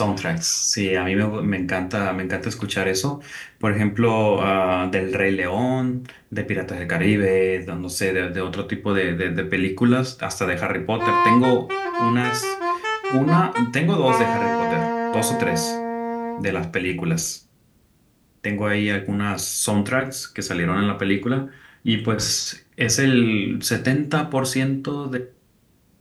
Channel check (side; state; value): both; identical; correlation 1.00